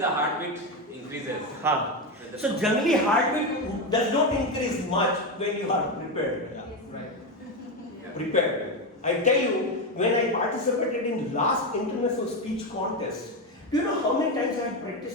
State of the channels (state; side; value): normal; both; correlation 0.12